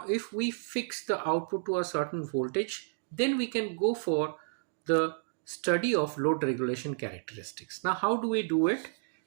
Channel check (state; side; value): silent; left; digital silence